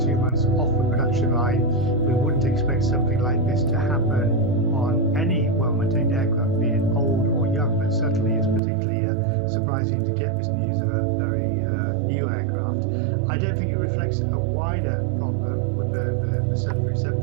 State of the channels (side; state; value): left; drops out; at 8.6 s